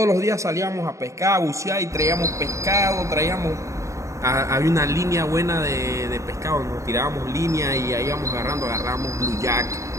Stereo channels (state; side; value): late; left; 0.15 ms